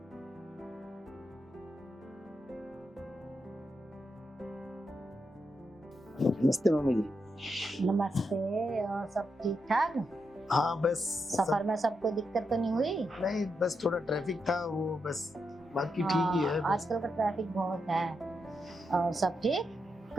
नमस्ते मम्मी जी। नमस्ते, और सब ठीक ठाक? हाँ बस सफर में सबको दिक्कत तो नहीं हुई? नहीं, बस थोड़ा ट्रैफिक था वो, बस बाकी ठीक ही है। हाँ, आजकल का ट्रैफिक बहुत है। और सब ठीक,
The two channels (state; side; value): normal; both; correlation 0.84